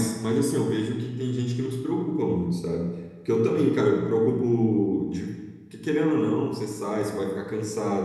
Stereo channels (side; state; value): both; identical; correlation 1.00